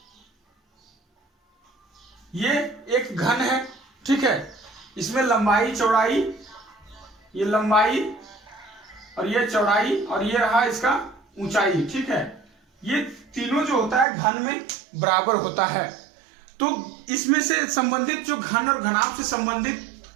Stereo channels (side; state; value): left; drops out; at 14.1 s